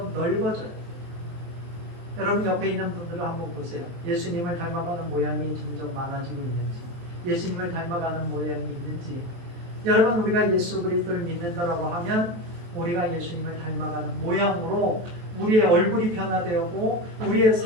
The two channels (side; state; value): left; late; 23 ms